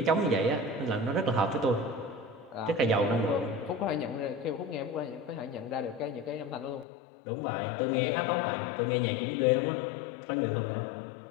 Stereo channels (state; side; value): drops out; right; at 6.9 s